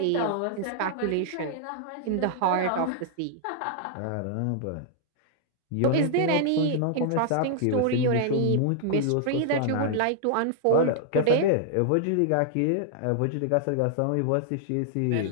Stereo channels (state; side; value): different; both; correlation -0.01